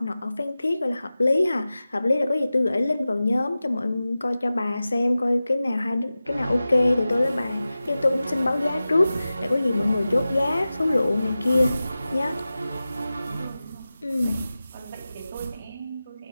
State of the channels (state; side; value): inverted; both; correlation -0.95